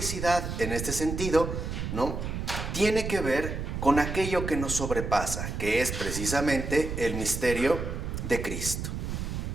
en este sentido, ¿no?, tiene que ver con aquello que nos sobrepasa, que es precisamente el misterio de Cristo.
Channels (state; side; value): noise; right; rumble, 4 dB below the sound